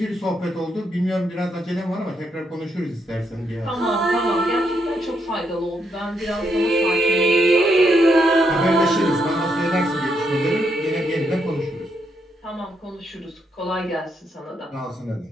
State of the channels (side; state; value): both; normal; correlation 0.78